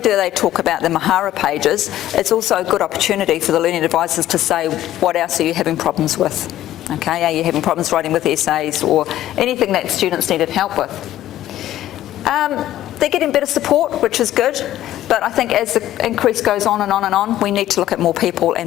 they talk about the Mahara pages, it's also a good opportunity for the learning advisors to say, what else are you having problems with? Okay, are you having problems writing with essays or anything that students needed help with? They're getting better support, which is good, but I think as the increase goes on and on and on, we need to look at more people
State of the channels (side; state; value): right; quieter; 13.4 dB